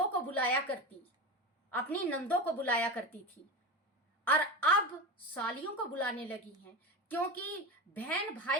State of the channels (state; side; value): normal; both; correlation 0.24